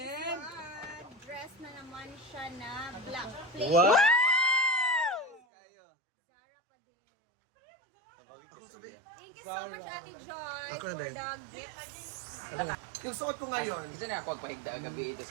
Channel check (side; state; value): left; drops out; at 5.4 s